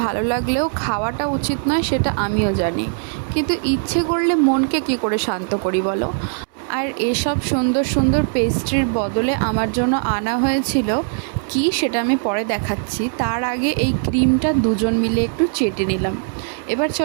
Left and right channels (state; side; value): silent; left; 66 dB below the other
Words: ভালো লাগলেও খাওয়াটা উচিত নয়, সেটা আমিও জানি, কিন্তু ইচ্ছে করলে মনকে কি করে শান্ত করি বলো। আর এসব সুন্দর সুন্দর পেস্ট্রির বদলে আমার জন্য আনা হয়েছিল কি, সেটা আমি পরে দেখাচ্ছি। তার আগে এই ক্রিমটা দুজন মিলে একটু চেটে নিলাম। এবার